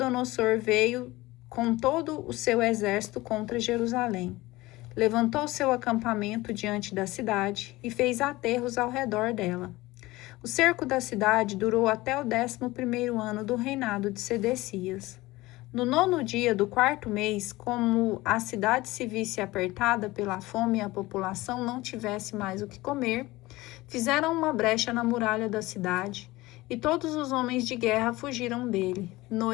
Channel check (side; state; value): right; quieter; 19.5 dB